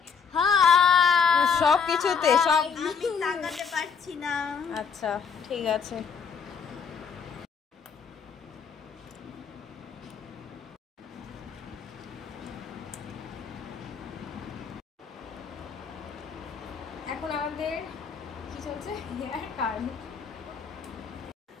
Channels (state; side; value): quieter; right; 6.1 dB